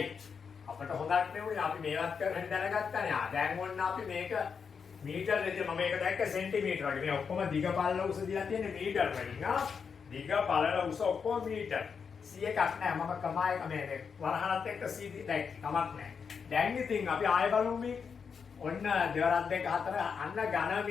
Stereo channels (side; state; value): right; quieter; 6.1 dB